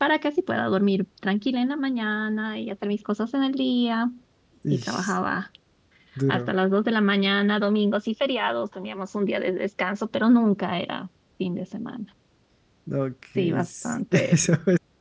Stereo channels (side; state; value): both; identical; correlation 1.00